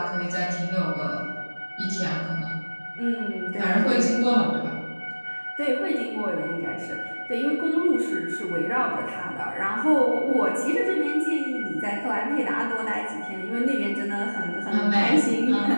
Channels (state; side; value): inverted; both; correlation -1.00